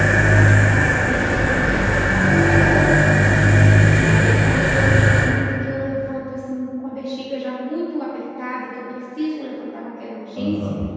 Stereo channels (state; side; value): identical; both; correlation 1.00